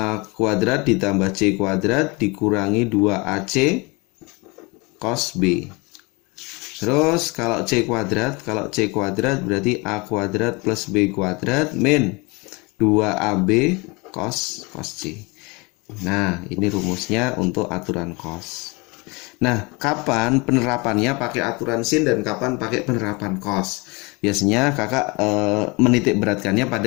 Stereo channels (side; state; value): right; quieter; 27.2 dB